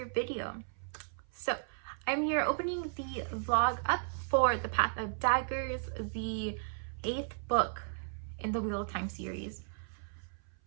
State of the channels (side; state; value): left; silent; 54 dB below the other